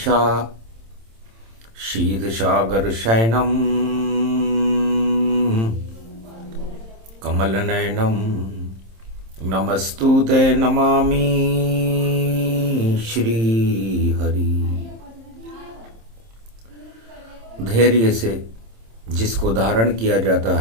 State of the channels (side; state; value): left; late; 26 ms